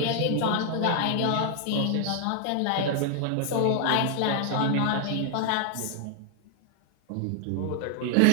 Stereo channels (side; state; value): both; different; correlation 0.00